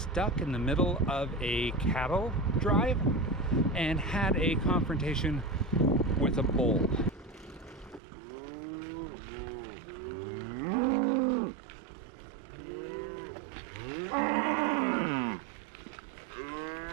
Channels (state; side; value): drops out; left; at 8.0 s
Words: in the middle of a cattle drive and had a confrontation with a bull.